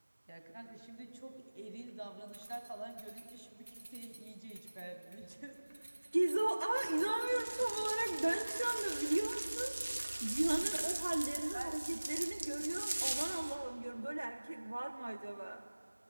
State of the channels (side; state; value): both; inverted; correlation -1.00